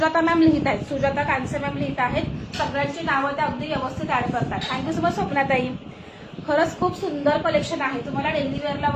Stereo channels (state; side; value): identical; both; correlation 1.00